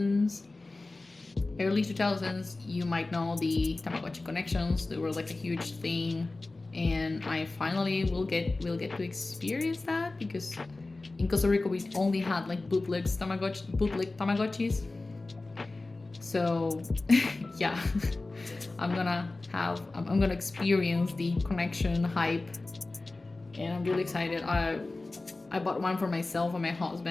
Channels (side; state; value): right; quieter; 3.2 dB